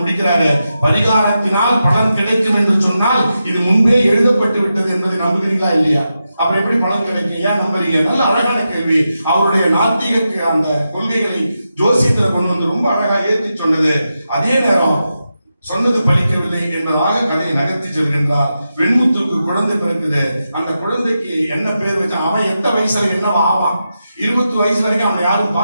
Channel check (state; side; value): inverted; both; correlation -0.89